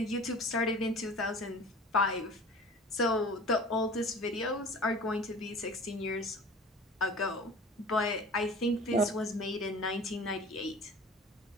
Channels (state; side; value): normal; both; correlation 0.41